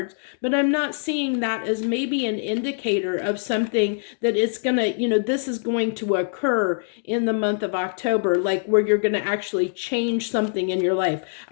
but I'm not seeing that as maybe an indicator of something that it's going to, this is going to occur in the month of October, like where you're going to actually change something in your life.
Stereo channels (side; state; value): right; silent; digital silence